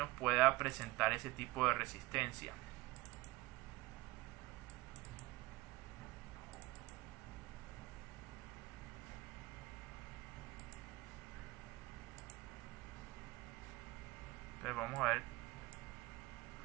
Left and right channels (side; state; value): left; quieter; 20.7 dB